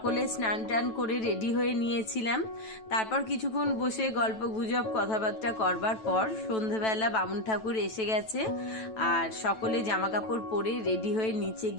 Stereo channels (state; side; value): late; right; 9.1 ms